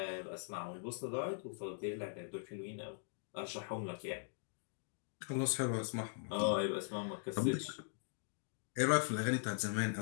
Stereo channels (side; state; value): right; silent; digital silence